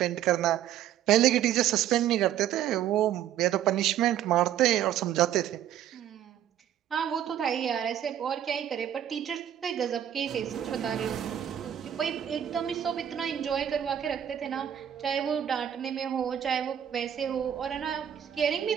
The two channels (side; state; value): left; quieter; 10.6 dB